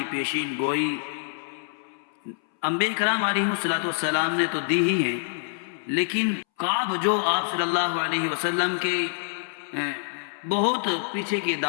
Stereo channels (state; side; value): silent; right; 61 dB below the other